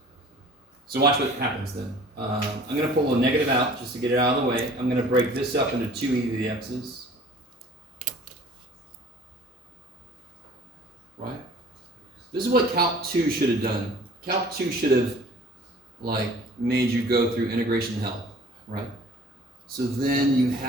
So watch what happens then. I'm going to pull a negative out just to get it out of the way. I'm going to break this up into 2 e to the x's. Right? This is what Calc 2 should have done. Calc 2 should have made you go through integration hell, right? So then you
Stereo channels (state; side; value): normal; both; correlation 0.49